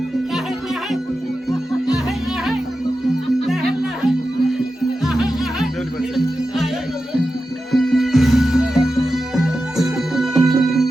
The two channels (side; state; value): both; normal; correlation 0.91